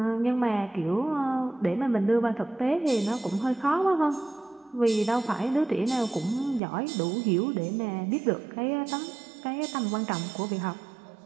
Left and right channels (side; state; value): left; drops out; at 6.6 s